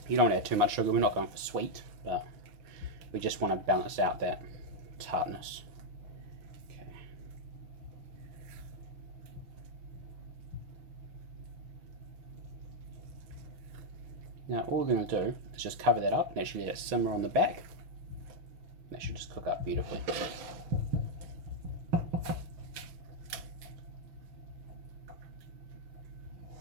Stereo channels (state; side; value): late; left; 6.0 ms